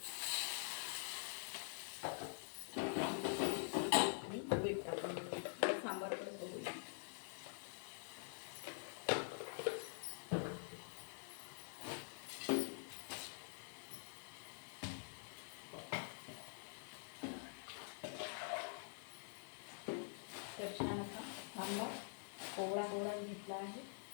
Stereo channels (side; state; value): right; silent; digital silence